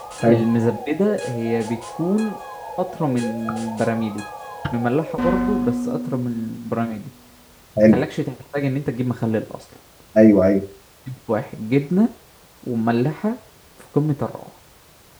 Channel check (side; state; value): both; identical; correlation 1.00